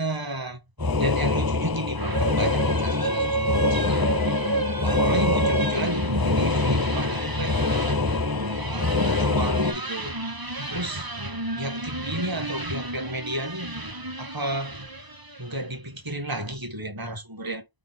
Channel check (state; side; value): late; left; 1.0 ms